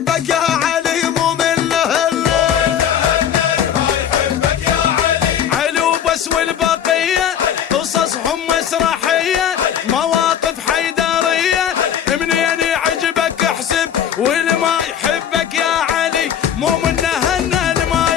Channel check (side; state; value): right; quieter; 9.3 dB